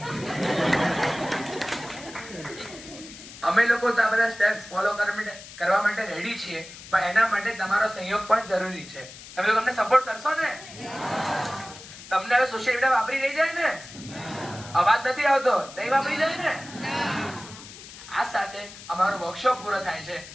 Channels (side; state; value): left; noise; hiss, 16 dB below the sound